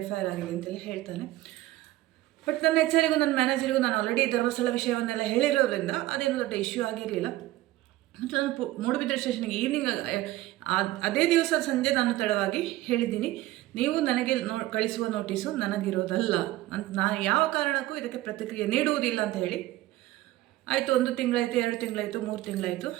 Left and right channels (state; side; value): quieter; left; 16.5 dB